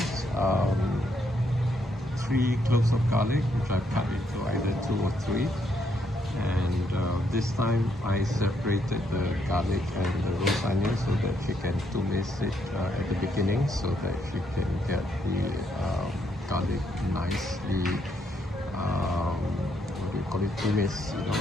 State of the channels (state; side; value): normal; both; correlation 0.75